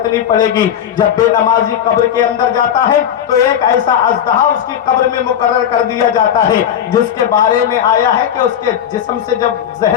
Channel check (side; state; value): right; quieter; 9.6 dB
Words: پڑے گی. جب بے نمازی قبر کے اندر جاتا ہے تو ایک ایسا اژدہا اس کی قبر میں مقرر کر دیا جاتا ہے جس کے بارے میں آیا ہے کہ اس کے جسم سے جب